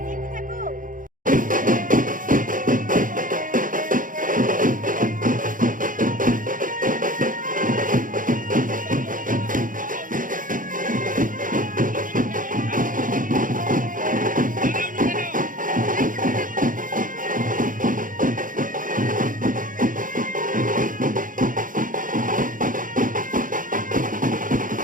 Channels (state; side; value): late; left; 0.39 ms